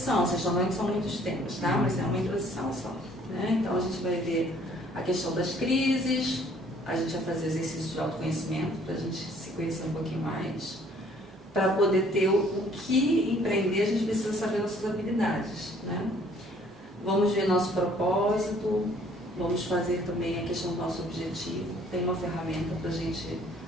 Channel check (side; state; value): both; normal; correlation 0.59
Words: Vocês estão vendo que são muitos temas, tá? Mas é uma introdução só. Né? Então, a gente vai ver a questão das crises, a gente vai fazer exercícios de autoconhecimento para a gente se conhecer um pouquinho mais. Para poder ter o que empreender, a gente precisa saber nossas habilidades. Né? Vamos ver nosso propósito, vamos fazer também a questão do nosso objetivo. Tem uma ferramenta para a gente